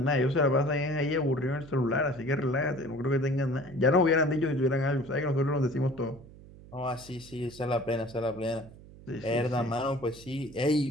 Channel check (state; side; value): noise; right; hum, 19 dB below the sound